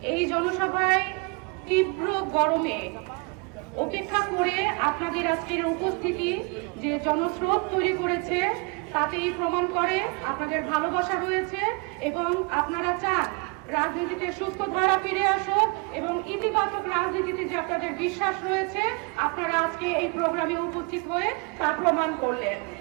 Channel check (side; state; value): left; quieter; 31.4 dB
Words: এই জনসভায় তীব্র গরমে উপেক্ষা করে আপনাদের আজকের উপস্থিতি যে জনস্রোত তৈরি করেছে তাতেই প্রমাণ করে আপনাদের ভালোবাসা রয়েছে এবং আপনারা চান রাজনীতিতে সুস্থ ধারা ফিরে আসুক এবং ইতিবাচক রাজনীতিতে যে আপনাদের বিশ্বাস রয়েছে, আপনারা আজকে এই প্রোগ্রামে উপস্থিত হয়ে তা প্রমাণ করলেন।